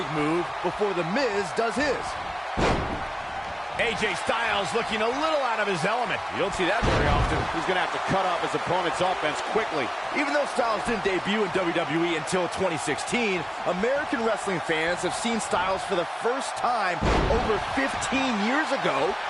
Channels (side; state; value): both; identical; correlation 1.00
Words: move before The Miz does his. AJ Styles looking a little out of his element. You don't see that very often. He's going to have to cut off his opponent's offense quickly. Even though Styles didn't debut in WWE until 2016, American wrestling fans have seen Styles for the first time over 15 years ago